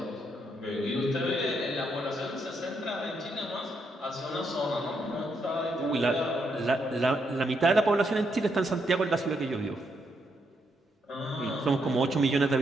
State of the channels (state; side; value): normal; both; correlation 0.78